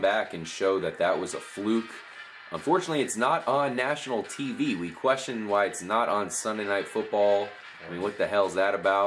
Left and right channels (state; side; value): identical; both; correlation 1.00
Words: back and show that that was a fluke. Unfortunately, it's not on national TV. We question why it's not on Sunday Night Football. I mean, what the hell is that